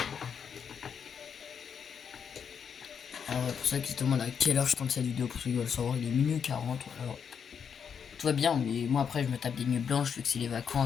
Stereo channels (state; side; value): quieter; right; 7.1 dB